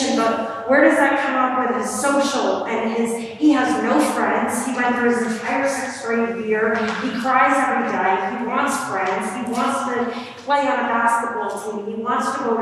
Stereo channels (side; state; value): both; identical; correlation 1.00